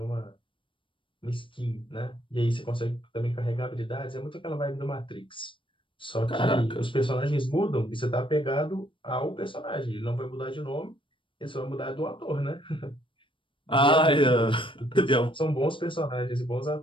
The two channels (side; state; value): right; late; 0.25 ms